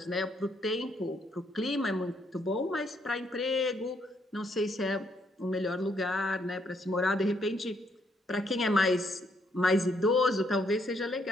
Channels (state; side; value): normal; both; correlation 0.72